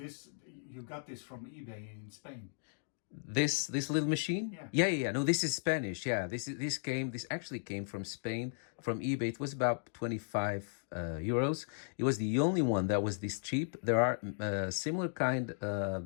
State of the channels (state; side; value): silent; right; digital silence